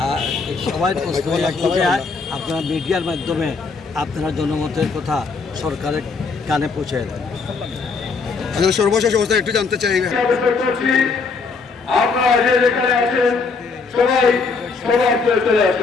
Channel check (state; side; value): quieter; right; 4.6 dB